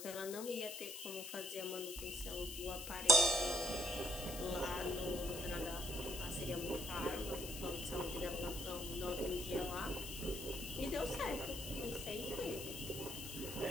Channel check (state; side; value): noise; left; hiss, 8 dB below the sound